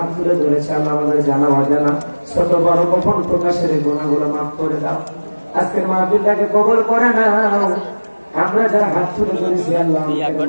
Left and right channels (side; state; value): both; inverted; correlation -1.00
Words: তুলে ধরেছে আল্লাহ আমাদের জানা অজানা ছোট বড় গোপন প্রকাশের গুনাহগুলো মাফ করে দাও। আজকের মাহফিলটাকে কবুল করে নাও। আমরা যারা হাত তুলে ধরেছি আল্লাহ